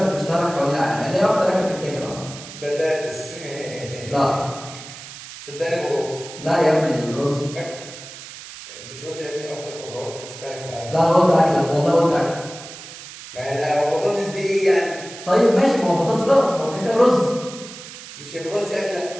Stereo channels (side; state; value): right; noise; hiss, 14 dB below the sound